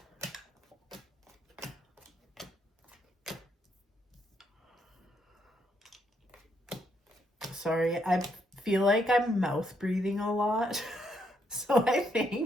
Sorry, I feel like I'm mouth breathing a lot. So I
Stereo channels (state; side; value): normal; both; correlation 0.75